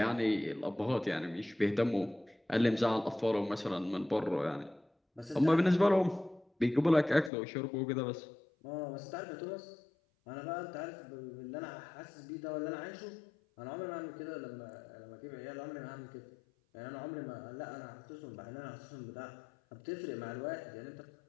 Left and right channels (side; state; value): right; drops out; at 7.3 s